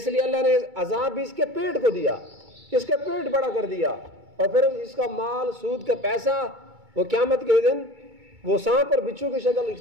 لیے اللہ نے عذاب بھی اس کے پیٹ کو دیا، اس کا پیٹ بڑا کر دیا، اور پھر اس کا مال، سود کا پیسہ وہ قیامت کے دن وہ سانپ اور بچھو کی شکل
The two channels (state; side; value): late; left; 2.2 ms